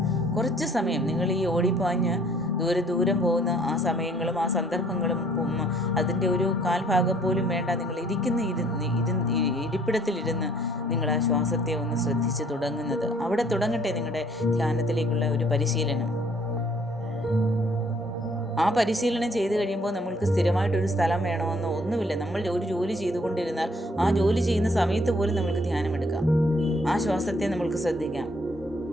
കുറച്ച് സമയം നിങ്ങൾ ഈ ഓടിപ്പാഞ്ഞ് ദൂരം പോകുന്ന ആ സമയങ്ങളും ആ സന്ദർഭങ്ങളും അതിൻ്റെ ഒരു കാൽഭാഗം പോലും വേണ്ട, നിങ്ങൾ ഇരിപ്പിടത്തിലിരുന്ന് നിങ്ങൾ ആ ശ്വാസത്തെ ഒന്ന് ശ്രദ്ധിച്ച് തുടങ്ങുന്നത്. അവിടെ തുടങ്ങട്ടെ നിങ്ങളുടെ ധ്യാനത്തിലേക്കുള്ള ഒരു പരിശീലനം. ആ പരിശീലനം ചെയ്ത് കഴിയുമ്പോൾ നമ്മൾക്ക് സ്ഥിരമായിട്ടൊരു സ്ഥലം വേണമെന്നോ ഒന്നുമില്ല. നമ്മൾ ഒരു ജോലി ചെയ്തുകൊണ്ടിരുന്നാൽ ആ ജോലി ചെയ്യുന്ന സമയത്ത് പോലും നമ്മൾക്ക് ധ്യാനമെടുക്കാം. ആ ശ്വാസത്തെ നമ്മൾക്ക് ശ്രദ്ധിക്കാം.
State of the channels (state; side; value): normal; both; correlation 0.61